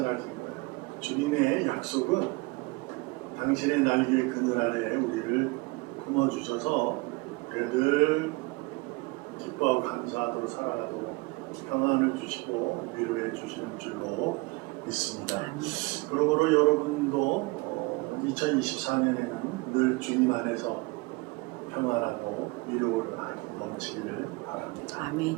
거예요. 주님의 약속은 당신의 날개 그늘 아래에 우리를 품어주셔서 늘 기뻐하고 감사하도록 살아가도록 평안을 주시고 위로해 주시는 줄로 믿습니다. 그러므로 여러분도 2024년에는 늘 주님 안에서 평안하고 위로를 넘치기를 바랍니다. 아멘.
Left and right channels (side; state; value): left; quieter; 25.1 dB